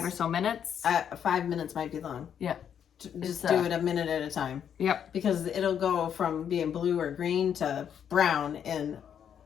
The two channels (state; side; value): quieter; right; 8.6 dB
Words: or so minutes? 5 minutes might be long. Yeah. Just do it a minute at a time. Yep. Because it'll go from being blue or green to brown in.